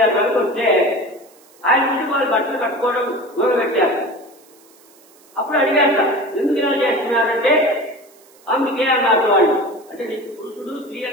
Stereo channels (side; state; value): right; noise; hiss, 28 dB below the sound